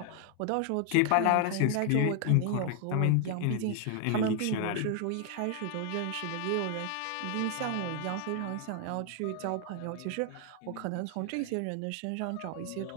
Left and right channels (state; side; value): different; both; correlation 0.00